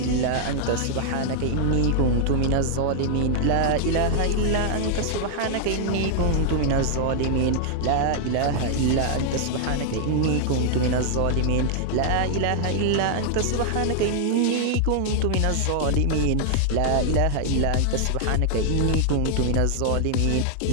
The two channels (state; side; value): different; both; correlation -0.01